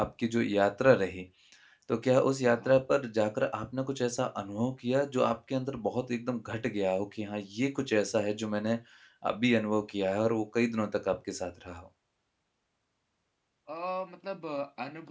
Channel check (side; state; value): both; identical; correlation 1.00